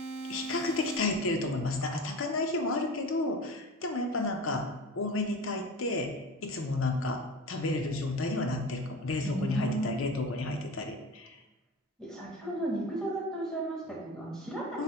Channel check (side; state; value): both; normal; correlation 0.33